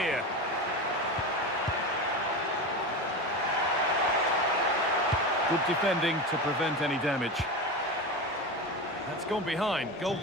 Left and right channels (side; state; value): both; normal; correlation 0.23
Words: Good defending to prevent any damage. That's gone behind. Goal